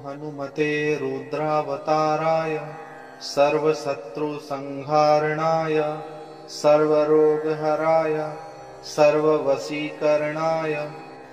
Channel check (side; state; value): both; identical; correlation 1.00